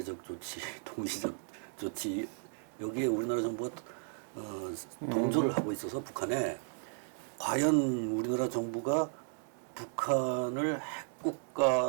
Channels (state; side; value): silent; left; 55 dB below the other